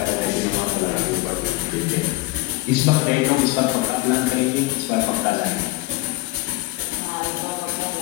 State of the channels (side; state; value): right; quieter; 20.3 dB